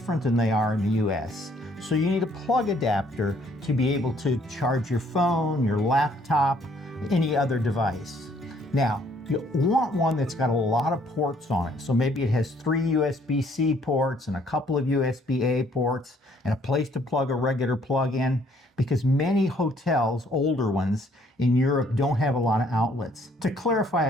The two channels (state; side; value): normal; both; correlation 0.64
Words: than they are in the US, so you need a plug adapter to be able to charge your phone, your laptop, any other device. Now, you want one that's got a lot of ports on it. So maybe it has 3 USB-C ports and a couple of USB-A ports and a place to plug a regular plug in, because many hotels, older ones in Europe, don't have a lot of outlets. To